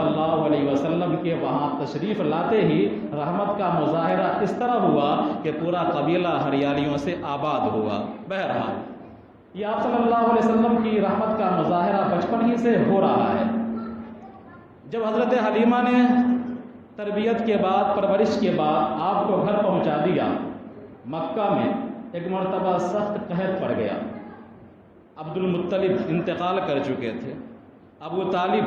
اللہ علیہ وسلم کے وہاں تشریف لاتے ہی رحمت کا مظاہرہ اس طرح ہوا کہ پورا قبیلہ ہریالیوں سے آباد ہوا۔ بہرحال یہ آپ صلی اللہ علیہ وسلم کی رحمت کا مظاہرہ بچپن ہی سے ہو رہا ہے۔ جب حضرت حلیمہ نے تربیت کے بعد، پرورش کے بعد آپ کو گھر پہنچا دیا، مکہ میں ایک مرتبہ سخت قحط پڑ گیا۔ عبد المطلب انتقال کر چکے تھے، ابو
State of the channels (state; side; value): identical; both; correlation 1.00